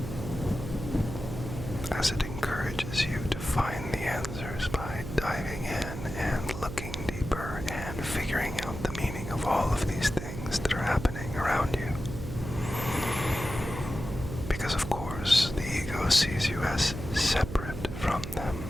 as it encourages you to find the answers by diving in and looking deeper and figuring out the meaning of all of these things that are happening around you. Because of course, the ego sees you as separate from them.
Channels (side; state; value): right; noise; hum, 8 dB below the sound